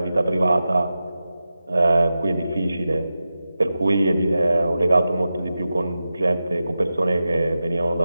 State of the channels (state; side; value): inverted; both; correlation -0.92